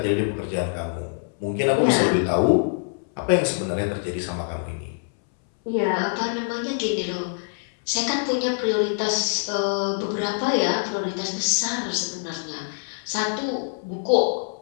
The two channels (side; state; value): right; silent; 62 dB below the other